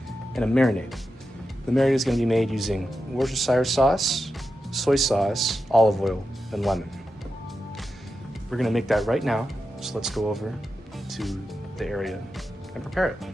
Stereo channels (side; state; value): both; normal; correlation 0.89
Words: and a marinade. The marinade is going to be made using Worcestershire sauce, soy sauce, olive oil, and lemon. We're going to make that right now, so let's go over to the area and prepare it.